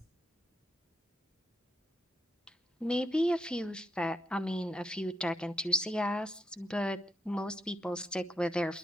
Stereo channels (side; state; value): both; normal; correlation 0.80